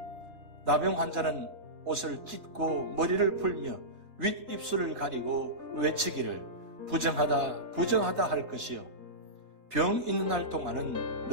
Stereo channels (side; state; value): left; late; 3.6 ms